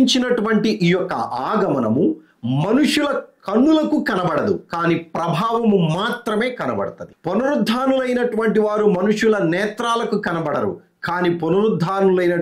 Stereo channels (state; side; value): identical; both; correlation 1.00